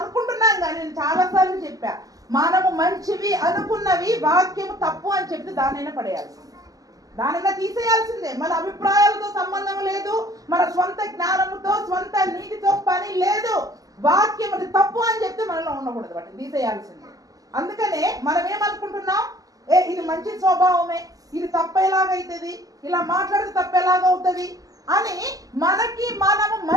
కానీ నేను చాలాసార్లు చెప్పా, మనము మంచివి అనుకున్నవి వాక్యము తప్పు అని చెప్పి దానైనా పడేయాల్సిందే, దానైనా తీసేయాల్సిందే. మన అభిప్రాయాలతో సంబంధం లేదు, మన స్వంత జ్ఞానముతో స్వంత నీతితో పని లేదు. వాక్యం అది తప్పు అని చెప్తే మనలో ఉండకూడదు, వాటిని తీసేయాల్సిందే. అందుకనే మనం ఏమనుకుంటున్నాం, ఇది మంచి స్వభావమే, ఇది తప్పేలాగైతుంది, ఇలా మాట్లాడితే తప్పేలాగవుతుంది అని మనకి మనము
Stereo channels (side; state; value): left; late; 0.17 ms